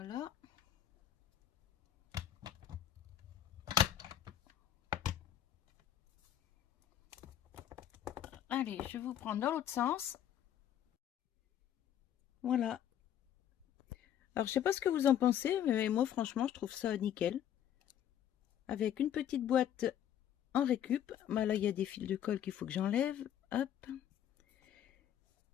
Allez, je vous prends dans l'autre sens. Voilà. Alors, je sais pas ce que vous en pensez, mais moi, franchement, je trouve ça nickel. Avec une petite boîte en récup. Bah, là, il y a des fils de colle qu'il faut que j'enlève. Hop.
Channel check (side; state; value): right; quieter; 10.5 dB